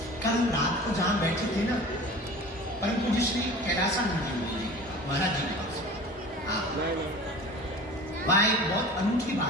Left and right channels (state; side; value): normal; both; correlation 0.39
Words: कल रात को जहां बैठे थे ना, परम पूज्य श्री कैलासानंद जी महाराज जी के पास, वहां एक बहुत अनूठी